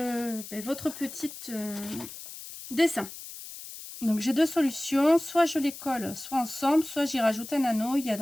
petite dessin. Donc, j'ai deux solutions. Soit je les colle soit ensemble, soit j'y rajoute un anneau. Il y a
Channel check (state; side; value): noise; left; hiss, 13 dB below the sound